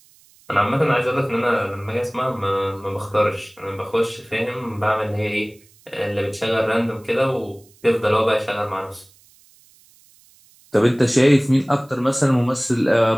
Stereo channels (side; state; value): right; noise; hiss, 29 dB below the sound